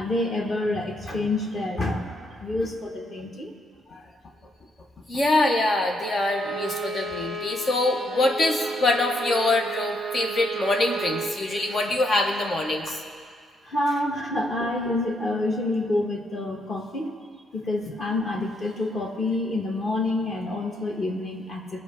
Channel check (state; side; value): normal; both; correlation 0.75